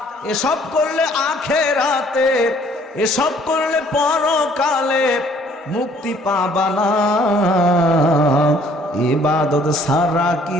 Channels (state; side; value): normal; both; correlation 0.59